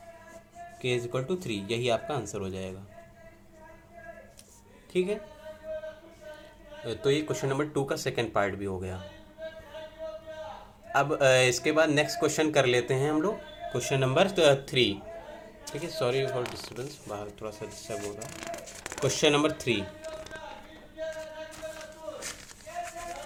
k = 3, यही आपका आंसर हो जाएगा, ठीक है। तो ये क्वेश्चन नंबर 2 का सेकंड पार्ट भी हो गया। अब इसके बाद नेक्स्ट क्वेश्चन कर लेते हैं हम लोग, क्वेश्चन नंबर 3, ठीक है। सॉरी फॉर डिस्टर्बेंस, बाहर थोड़ा सा डिस्टर्ब हो रहा है। क्वेश्चन नंबर 3,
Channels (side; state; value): both; identical; correlation 1.00